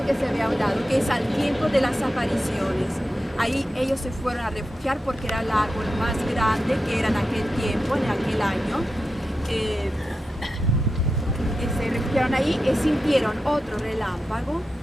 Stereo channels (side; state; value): both; normal; correlation 0.90